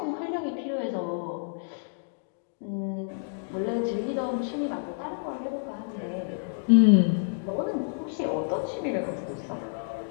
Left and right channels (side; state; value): right; silent; digital silence